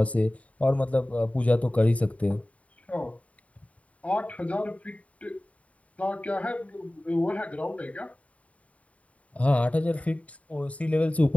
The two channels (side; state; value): right; late; 0.067 ms